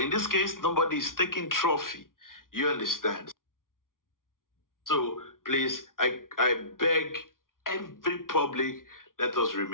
in this case, nobody is taking trophy. You understand? So please, I beg every public, let us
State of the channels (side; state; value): right; late; 0.90 ms